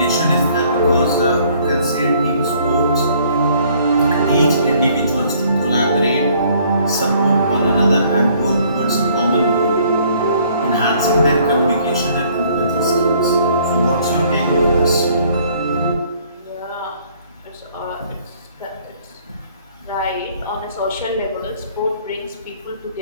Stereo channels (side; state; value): both; inverted; correlation -0.61